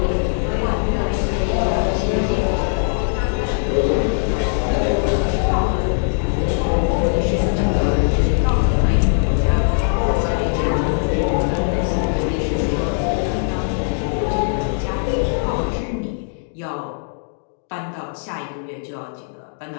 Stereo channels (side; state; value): right; silent; digital silence